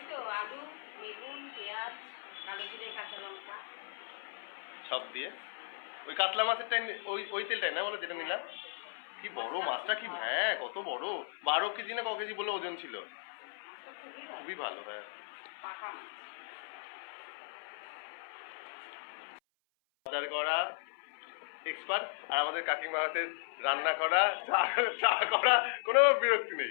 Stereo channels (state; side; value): silent; right; 54 dB below the other